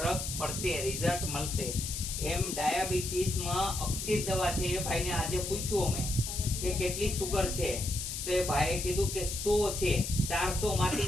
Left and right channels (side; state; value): left; noise; hiss, 5 dB below the sound